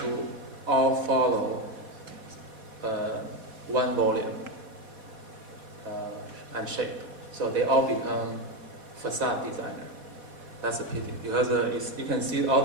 to all follow one volume and shape. So they all become facade designer. That's a pity, because you can see all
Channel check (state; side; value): late; left; 4.1 ms